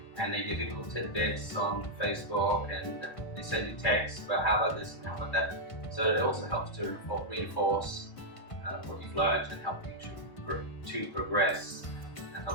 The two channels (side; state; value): right; late; 1.6 ms